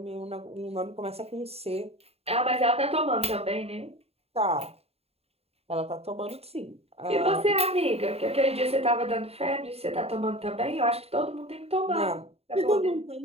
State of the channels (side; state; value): left; late; 0.29 ms